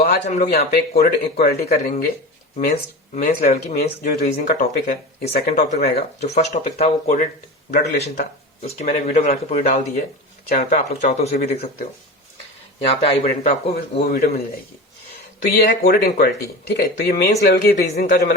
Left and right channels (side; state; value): both; normal; correlation 0.29